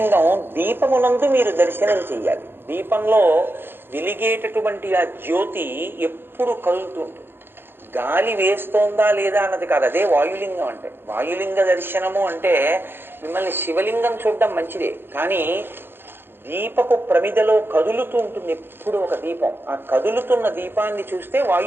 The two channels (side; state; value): left; late; 0.10 ms